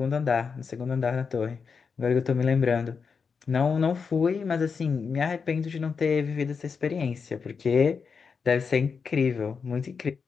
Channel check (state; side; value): quieter; right; 5.6 dB